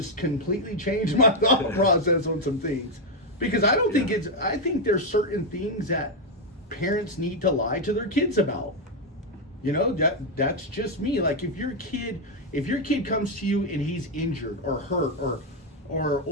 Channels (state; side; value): normal; both; correlation 0.03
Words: completely changed my thought process on some things. Because I don't think I think there's certain things that parents need to lie to their kids about. That's just me. Like, if your kid comes to you and he's injured or hurt